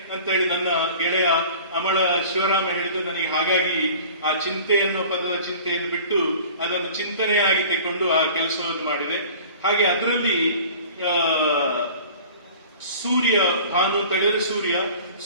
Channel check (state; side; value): inverted; both; correlation -0.43